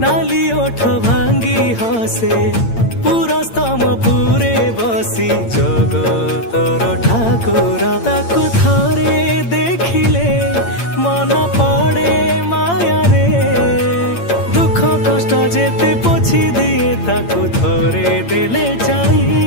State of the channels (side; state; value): right; late; 8.8 ms